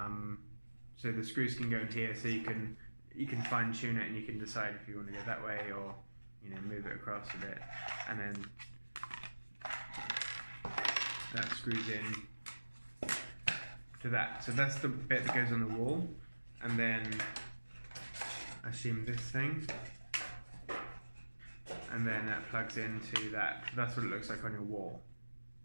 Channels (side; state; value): both; inverted; correlation -1.00